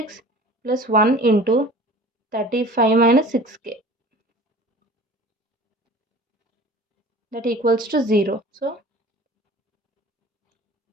plus 1 into 35 minus 6k. That equals to 0. So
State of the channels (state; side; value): normal; both; correlation 0.43